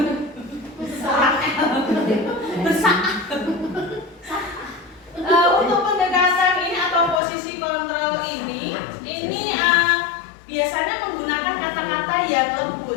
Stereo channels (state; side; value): drops out; right; at 7.2 s